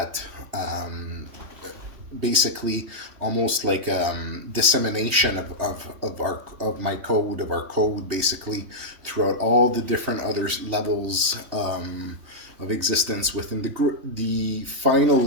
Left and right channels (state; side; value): late; left; 3.2 ms